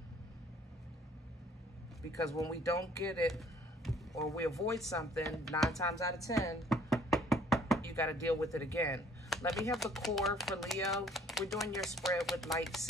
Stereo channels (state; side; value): normal; both; correlation 0.58